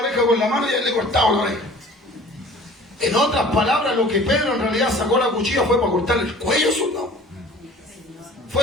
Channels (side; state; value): both; normal; correlation 0.46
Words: con la mano y él le cortaba la oreja. En otras palabras, lo que Pedro en realidad sacó la cuchilla fue para cortarle el cuello al soldado.